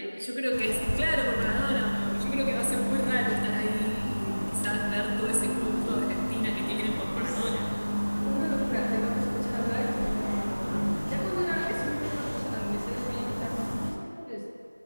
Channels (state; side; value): inverted; both; correlation -1.00